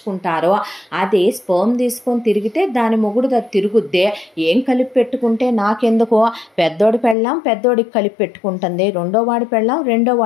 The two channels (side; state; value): right; drops out; at 7.2 s